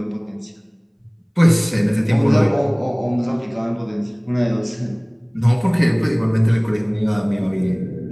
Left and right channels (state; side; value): identical; both; correlation 1.00